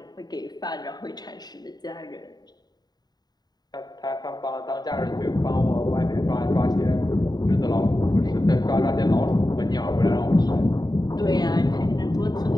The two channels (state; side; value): late; right; 0.20 ms